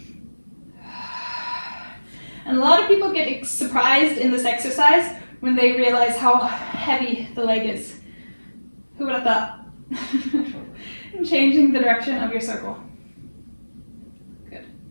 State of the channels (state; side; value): inverted; both; correlation -1.00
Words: And a lot of people get surprised in this exercise when they realize how heavy the leg is. Who would have thought? And changing the direction of your circle. Good.